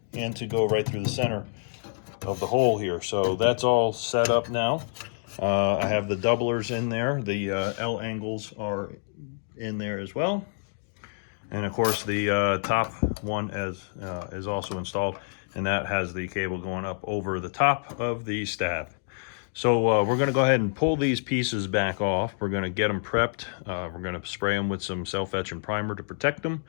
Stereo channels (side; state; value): right; silent; digital silence